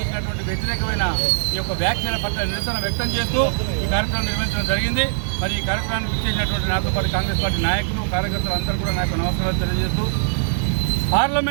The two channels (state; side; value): silent; left; 65 dB below the other